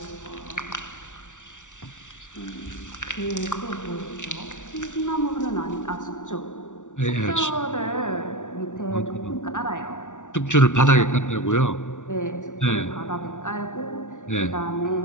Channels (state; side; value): late; right; 0.86 ms